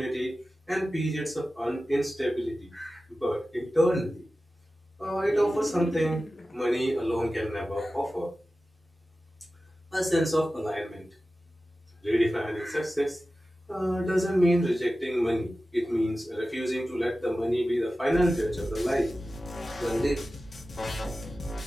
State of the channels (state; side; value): normal; both; correlation 0.95